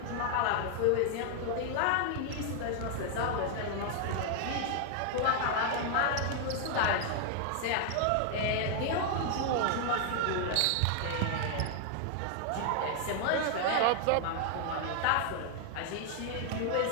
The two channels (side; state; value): both; different; correlation 0.00